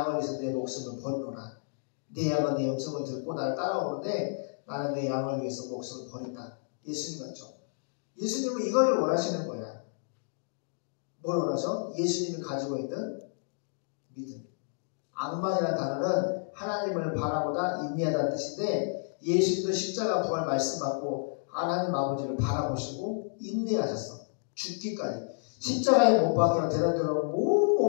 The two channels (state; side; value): silent; right; digital silence